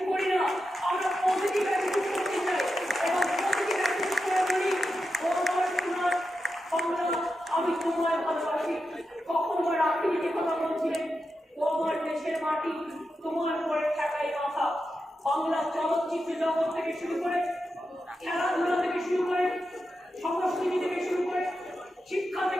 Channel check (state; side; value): normal; both; correlation 0.89